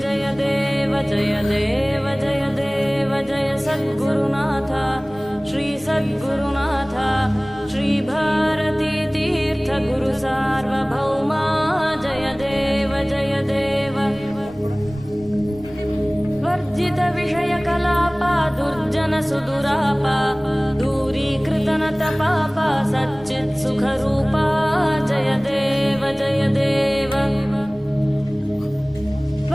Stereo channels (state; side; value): noise; left; rumble, 24 dB below the sound